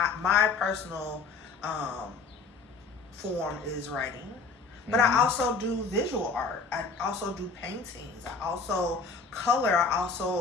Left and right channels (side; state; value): right; quieter; 4.5 dB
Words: My personal form is writing, but I also do visual art. I also do paintings. I also color. I